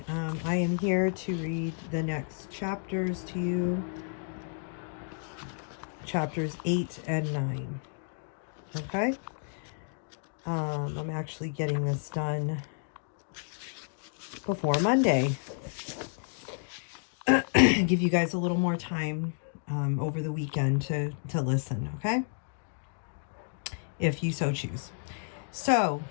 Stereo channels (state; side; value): silent; right; digital silence